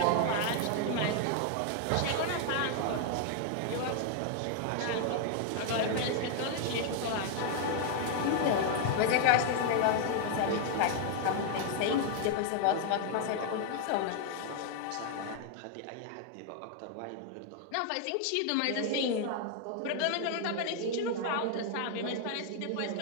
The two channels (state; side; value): different; both; correlation 0.00